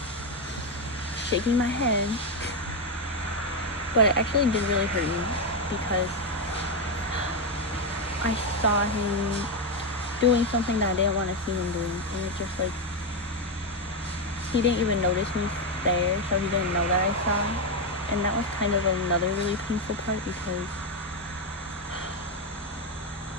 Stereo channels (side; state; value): both; normal; correlation 0.07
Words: shaking my head. But it actually did really hurt me, because I saw him doing something that I didn't want to see him doing, and it just, like, he didn't even notice me there, so he didn't know that I saw. And that was kind of another really painful part, because